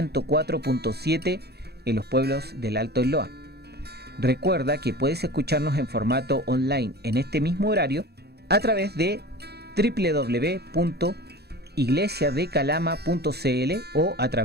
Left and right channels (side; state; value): left; late; 0.47 ms